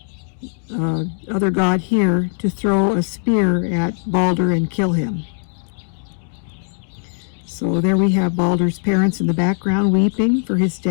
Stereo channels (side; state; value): right; silent; digital silence